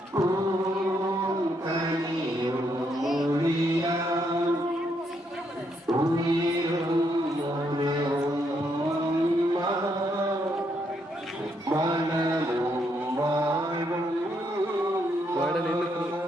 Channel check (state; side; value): normal; both; correlation 0.76